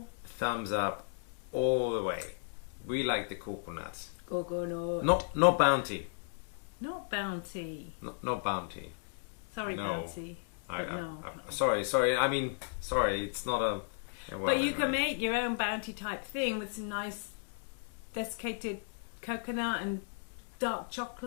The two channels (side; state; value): right; silent; digital silence